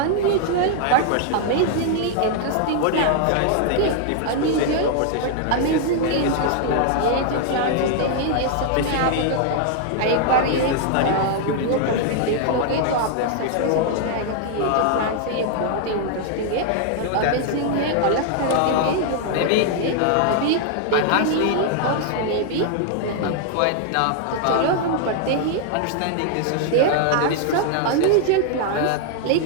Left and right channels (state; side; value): different; both; correlation 0.00